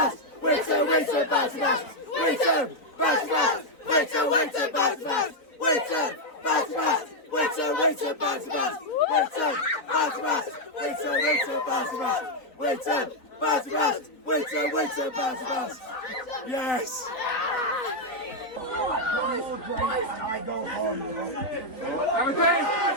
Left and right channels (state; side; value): late; right; 3.9 ms